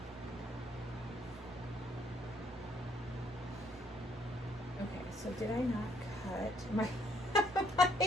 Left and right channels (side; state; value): both; normal; correlation 0.67